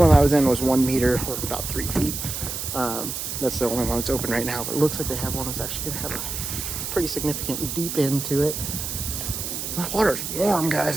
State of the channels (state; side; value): noise; right; hiss, 5 dB below the sound